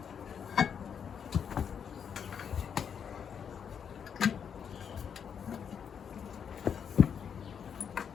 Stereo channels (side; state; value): right; quieter; 7.5 dB